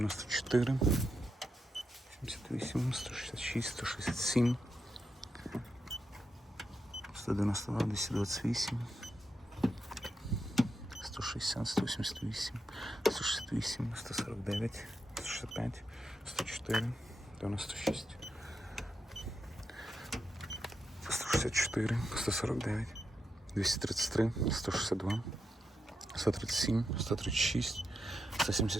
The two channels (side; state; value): both; normal; correlation 0.85